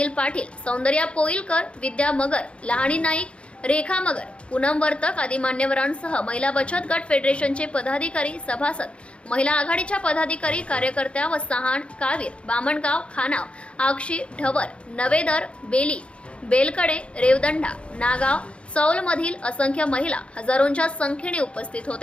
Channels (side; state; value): right; late; 0.059 ms